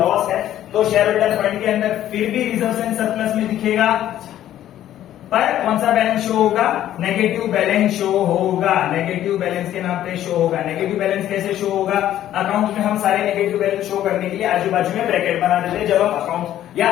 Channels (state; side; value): quieter; right; 12.2 dB